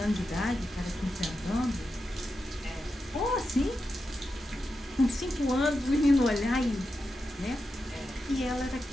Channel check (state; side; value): normal; both; correlation 0.89